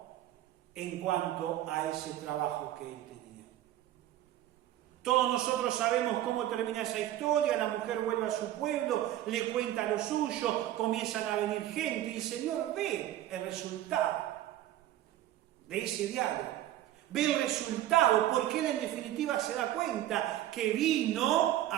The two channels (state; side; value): quieter; left; 13.4 dB